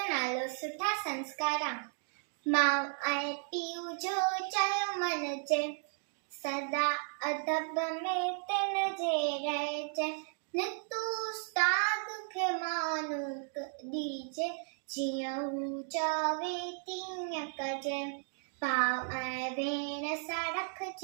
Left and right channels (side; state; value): left; silent; 55 dB below the other